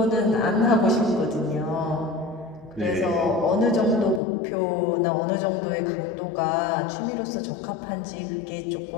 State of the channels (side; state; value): right; drops out; at 4.2 s